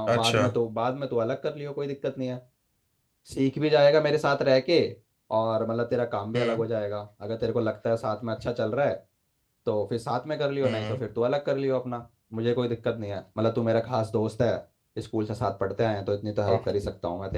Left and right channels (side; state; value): both; identical; correlation 1.00